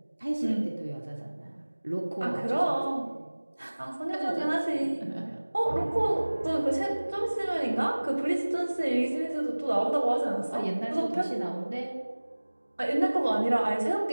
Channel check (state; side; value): inverted; both; correlation -1.00